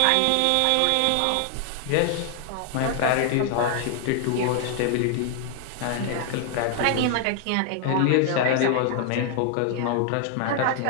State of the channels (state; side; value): different; both; correlation 0.00